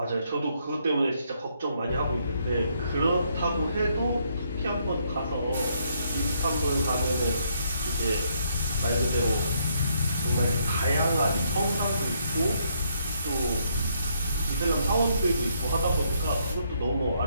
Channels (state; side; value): inverted; both; correlation -0.72